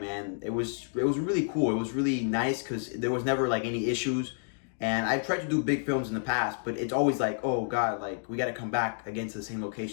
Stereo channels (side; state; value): right; silent; digital silence